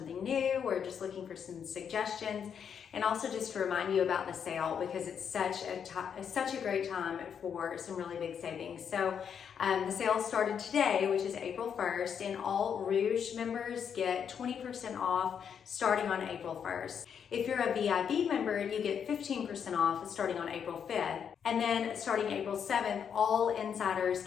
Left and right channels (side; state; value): right; quieter; 7.6 dB